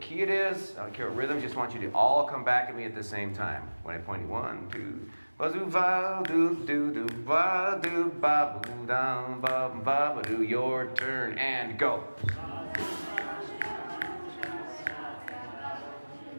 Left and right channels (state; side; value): inverted; both; correlation -1.00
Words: key it is, I don't care what rhythm, just want you to all come back at me at the same time. When I point you, 1, 2, ba-zoo, va, do, do, do, ba, do, ba, boo, down, ba, ba, ba, do, your turn, and go.